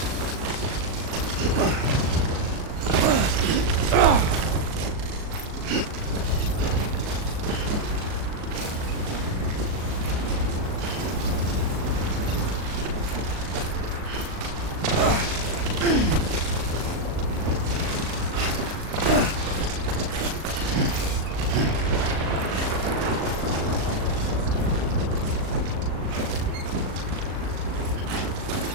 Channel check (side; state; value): left; late; 38 ms